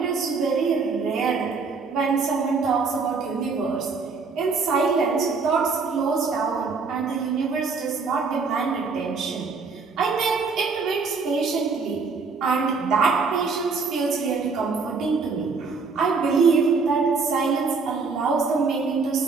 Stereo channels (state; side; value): quieter; left; 4.7 dB